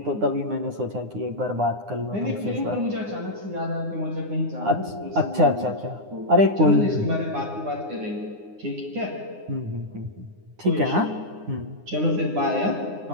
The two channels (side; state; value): left; late; 9.7 ms